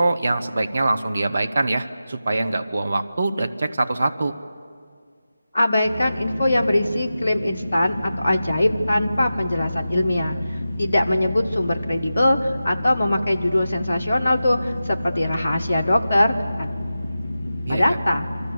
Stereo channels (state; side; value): inverted; both; correlation -0.93